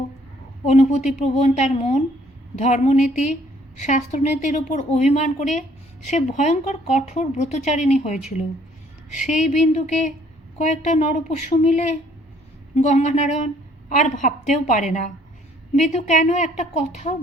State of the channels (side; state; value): both; normal; correlation 0.61